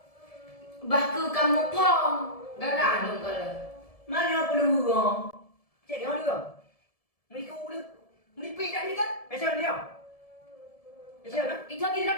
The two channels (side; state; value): right; late; 1.7 ms